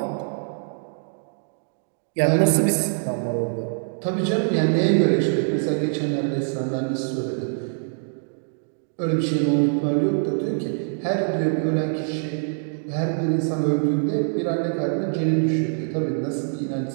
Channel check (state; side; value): silent; left; digital silence